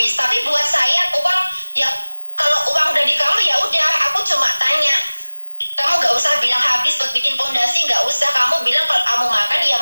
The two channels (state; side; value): inverted; both; correlation -1.00